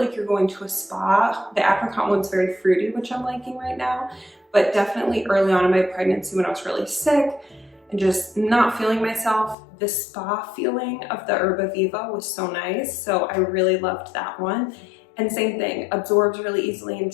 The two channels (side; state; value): right; drops out; at 9.6 s